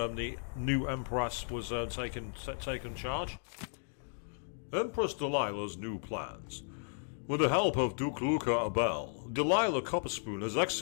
new Empress was taken charge. Empress Delilah's new plans. With the help of Duke Luca Abel, Delilah Copperspoon has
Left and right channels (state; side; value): silent; right; digital silence